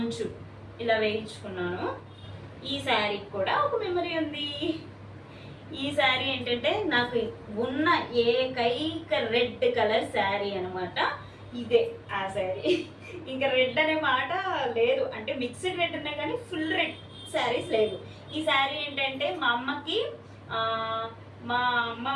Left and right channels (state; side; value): identical; both; correlation 1.00